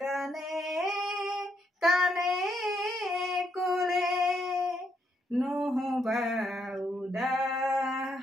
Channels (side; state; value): both; normal; correlation 0.77